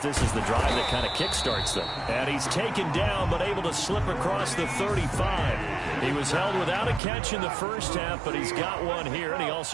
is the drive that kind of kickstarts them. And he's taken down, but able to slip across the 35. He was held without a catch in the first half, but he's got one here, and he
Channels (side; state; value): left; drops out; at 7.0 s